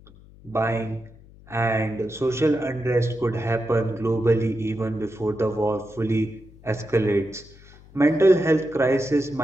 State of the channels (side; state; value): left; noise; hum, 23 dB below the sound